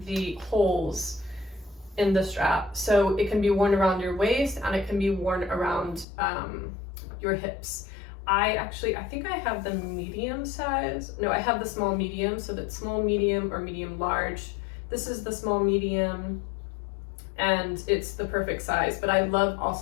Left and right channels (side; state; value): right; drops out; at 6.1 s